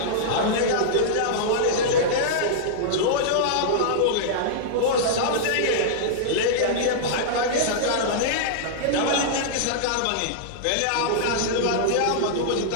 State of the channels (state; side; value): different; both; correlation -0.02